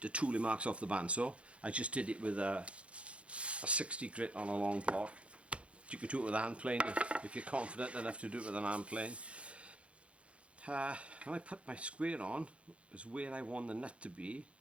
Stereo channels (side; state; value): left; late; 0.061 ms